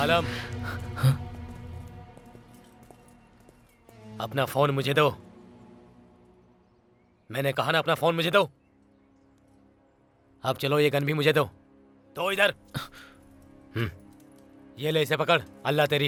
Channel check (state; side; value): identical; both; correlation 1.00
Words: अपना फोन मुझे दो। मैंने कहा ना, अपना फोन मुझे दो। अब चलो, ये गन भी मुझे दो। तो इधर ये ले, इसे पकड़। अल्लाह तेरी